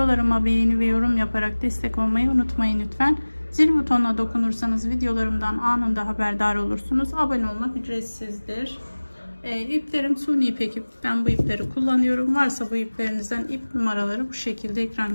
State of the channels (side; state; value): both; inverted; correlation -1.00